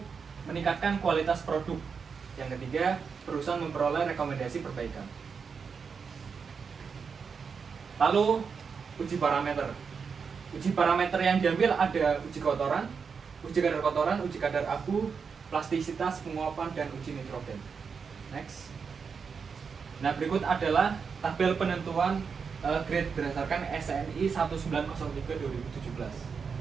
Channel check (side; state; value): left; quieter; 5.8 dB